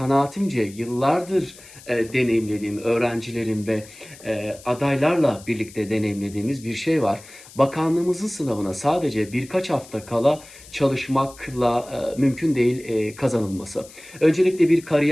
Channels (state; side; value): noise; left; hiss, 20 dB below the sound